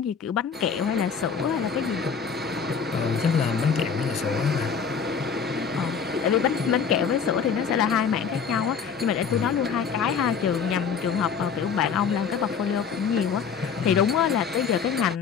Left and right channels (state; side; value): quieter; right; 6.4 dB